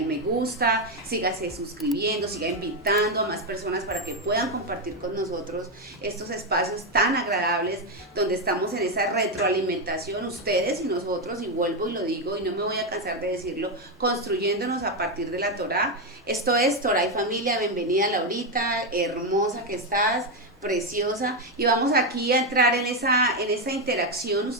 me gusta, sígase suscribiendo, siga invitando a más personas para que puedan compartir con nosotros estos espacios tan agradables donde estamos en esa retroalimentación, ustedes y nosotros, y vuelvo y lo digo y no me voy a cansar de decirlo, construyéndonos a partir de la Torá. Esto es Torá y Familia. Bienvenida, Laurita, hermosa que estás, preciosa, y vamos aquí a entrar en esa interacción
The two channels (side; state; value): both; normal; correlation 0.06